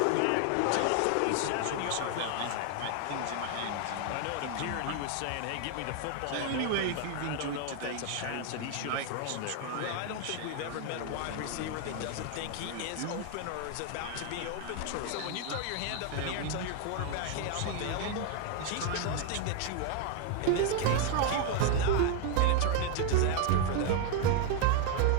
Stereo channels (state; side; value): different; both; correlation 0.01